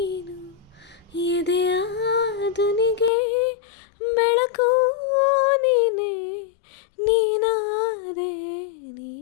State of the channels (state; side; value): drops out; right; at 3.1 s